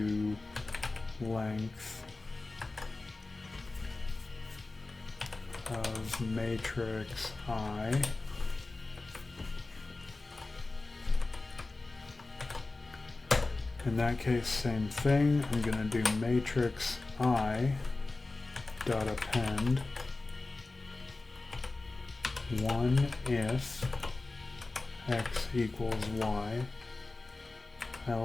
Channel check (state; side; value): quieter; right; 3.3 dB